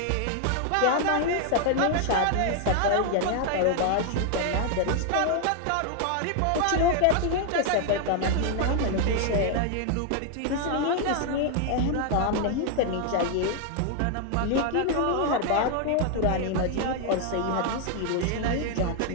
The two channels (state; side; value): different; both; correlation 0.00